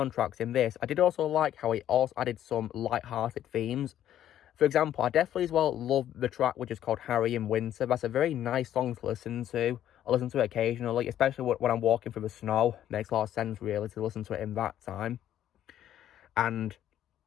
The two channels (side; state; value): right; quieter; 11.4 dB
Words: in this, I did also like how he also added some light-hearted themes. For example, I definitely as well love the track which is called Harry in Winter. That's a very nice song to listen to. I listen to it occasionally, especially when I'm walking through the snow. It makes a lot of sense, really, to listen to it in that time. And